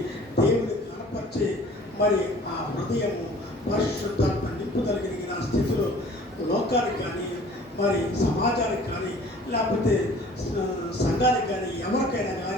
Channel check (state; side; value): normal; both; correlation 0.50